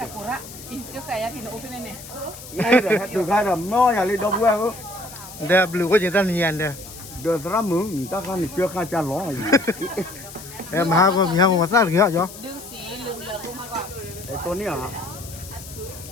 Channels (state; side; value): noise; left; hiss, 15 dB below the sound